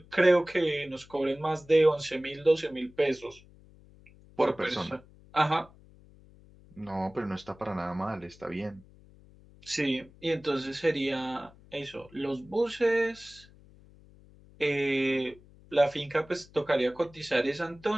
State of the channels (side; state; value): left; noise; hum, 25 dB below the sound